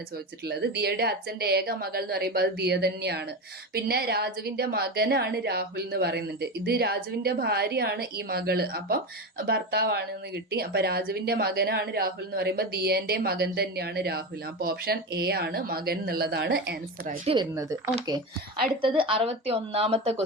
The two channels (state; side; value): normal; both; correlation 0.20